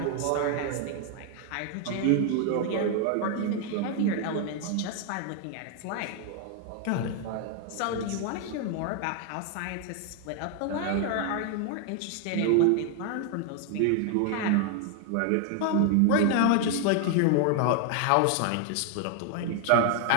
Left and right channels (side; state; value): both; different; correlation 0.00